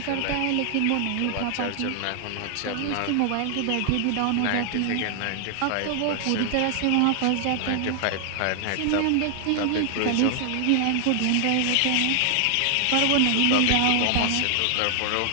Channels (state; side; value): different; both; correlation 0.00